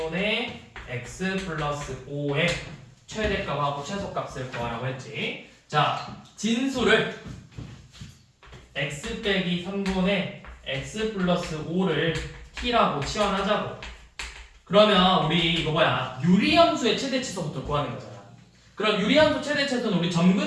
x 플러스 5의 최대값하고 최소값을 구하라고 했지. 자, 진수를 x 빼기 3분의 x 플러스 5를 t라고 치환하자고. 그러면 우리 이거 유리함수의 최대치수부터 구하는 거잖아. 그럼 유리함수 최대치수는 우리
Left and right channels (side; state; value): both; identical; correlation 1.00